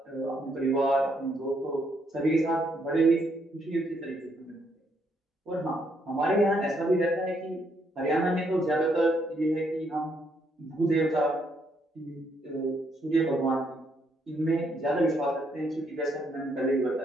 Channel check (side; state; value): both; normal; correlation 0.74